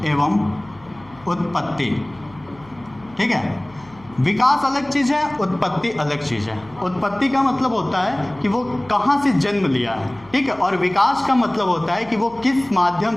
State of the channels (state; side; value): noise; left; hum, 25 dB below the sound